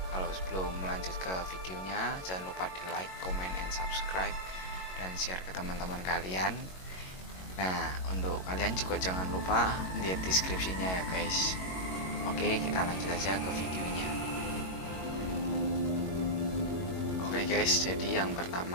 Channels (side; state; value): right; late; 22 ms